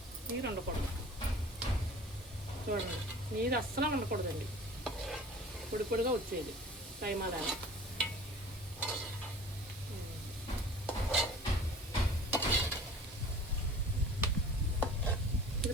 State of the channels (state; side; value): normal; both; correlation 0.44